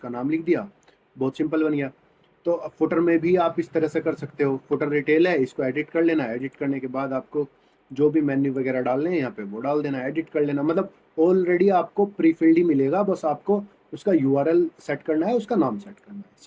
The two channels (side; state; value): both; identical; correlation 1.00